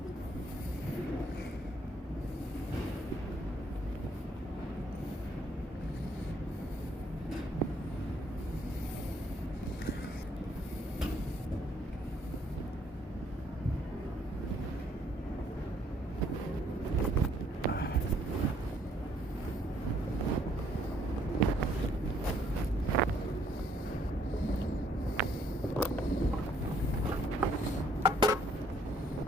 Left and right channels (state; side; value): normal; both; correlation 0.66